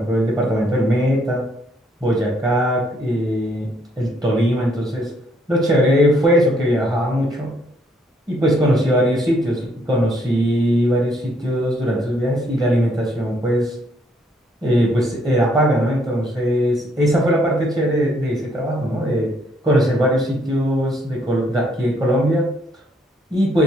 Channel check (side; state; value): both; normal; correlation 0.69